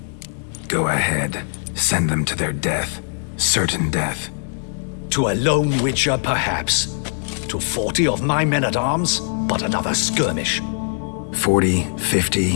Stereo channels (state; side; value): silent; right; 65 dB below the other